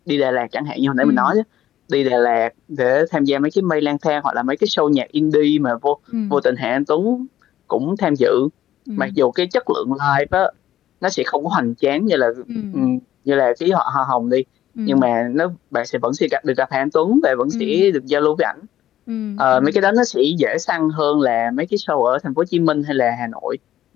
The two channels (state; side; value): quieter; right; 12.4 dB